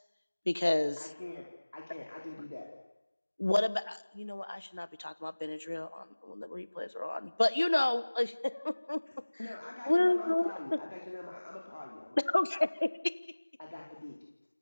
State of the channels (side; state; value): both; inverted; correlation -1.00